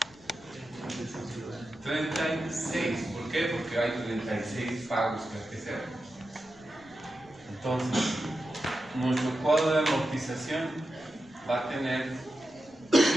36. ¿Por qué? Porque hay 36 pagos que hay que hacer. Entonces, nuestro cuadro de amortización va a tener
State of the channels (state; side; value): noise; left; rumble, 27 dB below the sound